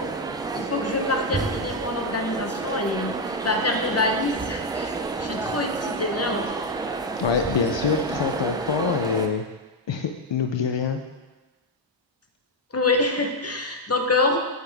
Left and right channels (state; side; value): normal; both; correlation 0.03